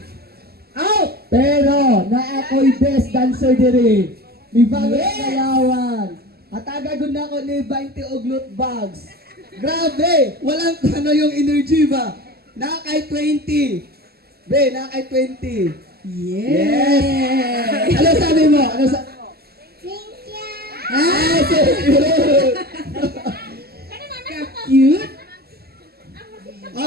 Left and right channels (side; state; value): left; late; 0.46 ms